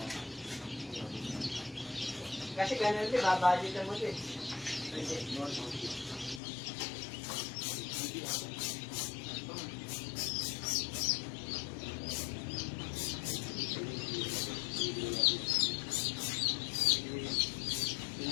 Kasi ganun din, babudgetan mo din.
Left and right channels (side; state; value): right; drops out; at 6.4 s